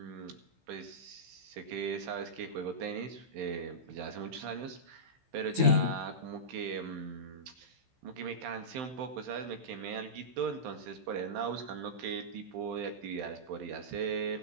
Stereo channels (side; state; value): left; late; 15 ms